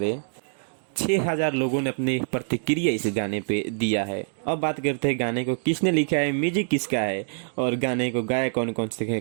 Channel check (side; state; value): left; silent; digital silence